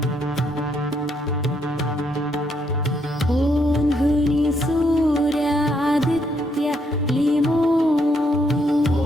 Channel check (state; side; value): normal; both; correlation 0.74